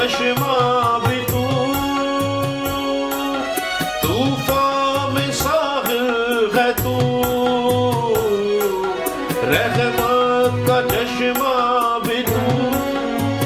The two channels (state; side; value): identical; both; correlation 1.00